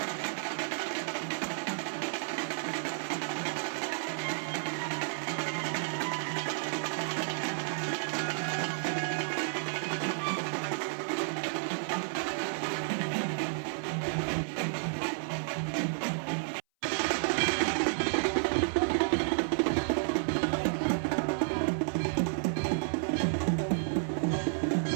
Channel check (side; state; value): left; silent; 57 dB below the other